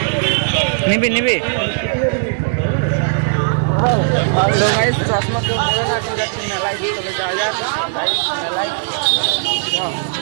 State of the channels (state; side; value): silent; left; digital silence